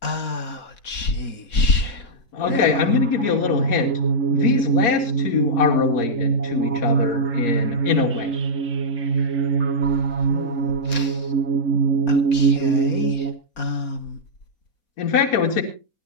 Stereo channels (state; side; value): late; right; 4.2 ms